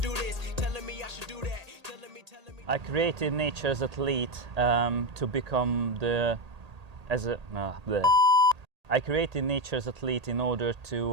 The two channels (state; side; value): late; left; 1.8 ms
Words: do this, telling me I should do that. Telling me. I created Nature's Athlete to become I created Nature's Athlete in order to